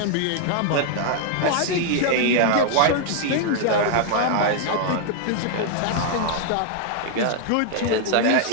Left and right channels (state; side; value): different; both; correlation 0.00